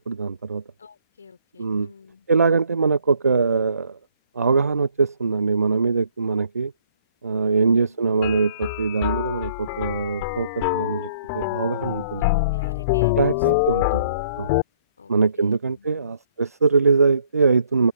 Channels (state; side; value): inverted; both; correlation -0.64